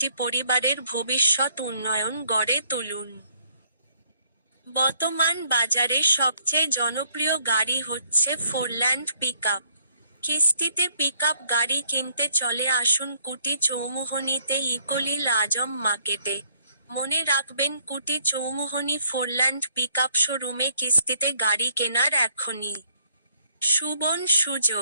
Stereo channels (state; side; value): inverted; both; correlation -0.67